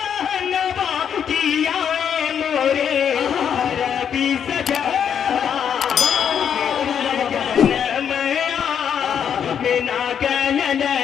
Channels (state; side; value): quieter; right; 8.2 dB